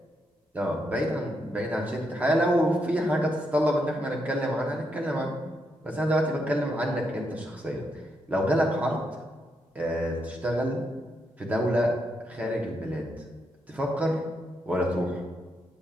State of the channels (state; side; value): normal; both; correlation 0.80